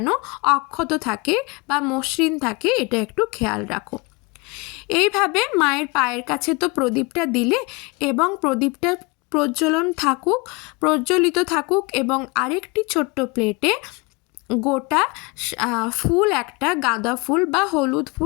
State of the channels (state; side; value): quieter; right; 27.2 dB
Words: অক্ষত থাকে বা মসৃণ থাকে, এটা একটু খেয়াল রাখো। এইভাবে মায়ের পায়ের কাছে তো প্রদীপটা দিলে এবং প্রদীপটা প্রজ্বলিত থাকুক এবং আরেকটি ছোট্ট প্লেটে গোটা ফুল, একটা গাঁদা ফুল বা হলুদ